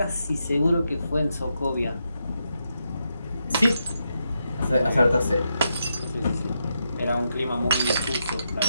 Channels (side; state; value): both; inverted; correlation -0.83